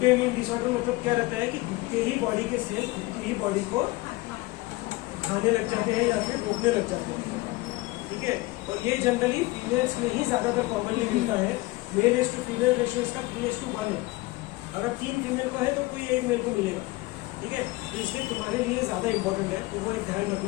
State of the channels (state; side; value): quieter; right; 20.8 dB